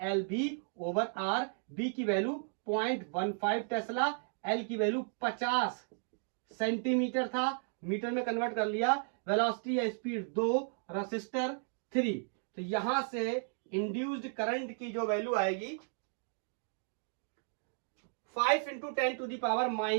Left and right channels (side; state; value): left; silent; 55 dB below the other